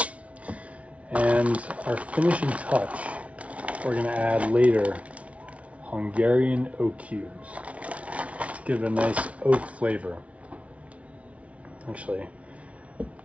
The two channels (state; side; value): late; left; 0.064 ms